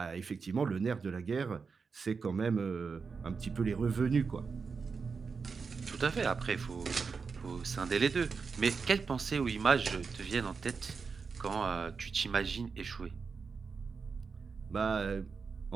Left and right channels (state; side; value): quieter; left; 5.2 dB